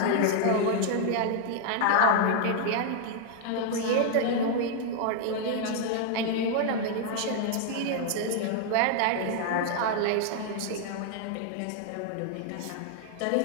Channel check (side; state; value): both; different; correlation 0.00